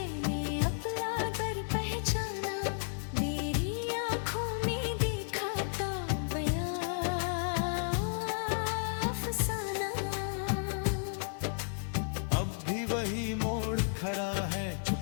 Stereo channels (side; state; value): right; silent; 56 dB below the other